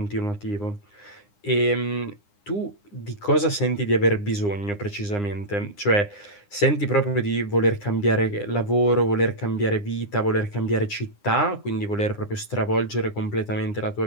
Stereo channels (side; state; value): right; late; 9.8 ms